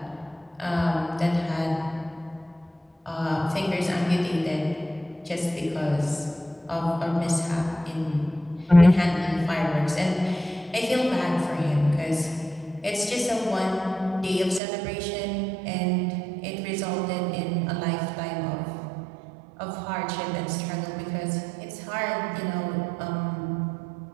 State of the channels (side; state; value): left; drops out; at 14.6 s